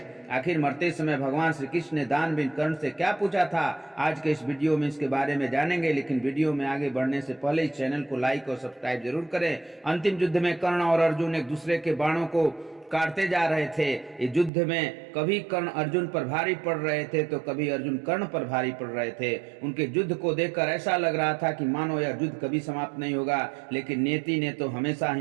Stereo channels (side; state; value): left; drops out; at 14.5 s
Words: आखिर मरते समय भगवान श्री कृष्ण ने दानवीर कर्ण से क्या पूछा था, आज के इस वीडियो में इसके बारे में जानेंगे। लेकिन वीडियो में आगे बढ़ने से पहले इस चैनल को लाइक और सब्सक्राइब जरूर करें। अंतिम युद्ध में कर्ण और अर्जुन एक दूसरे के बाणों को काटते जा रहे थे। इस युद्ध में कभी कर्ण अर्जुन पर भारी पड़ रहे थे तो कभी अर्जुन कर्ण पर भारी पड़ रहे थे। उनके युद्ध को देखकर ऐसा लग रहा था कि मानो यह युद्ध कभी समाप्त नहीं होगा। लेकिन नियति ने तो हमेशा